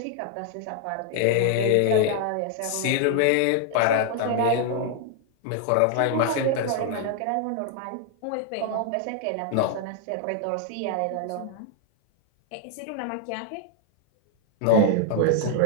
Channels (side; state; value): both; different; correlation 0.00